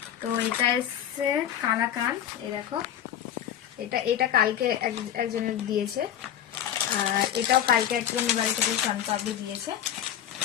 তো এটা এসছে কালাকান, এই দেখো, এটা কালকে একজনের দিয়েছে, আর এটাও কালকে একজন বাড়ি থেকে সনপাপড়ি দিয়েছে।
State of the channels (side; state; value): right; quieter; 10.5 dB